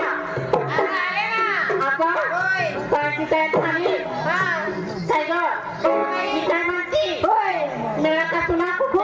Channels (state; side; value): identical; both; correlation 1.00